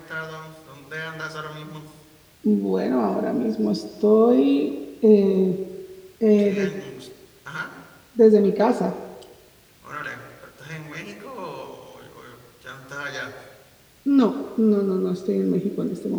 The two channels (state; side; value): identical; both; correlation 1.00